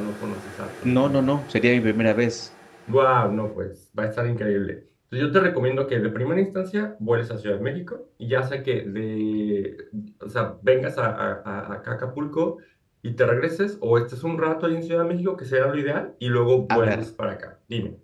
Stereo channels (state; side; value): identical; both; correlation 1.00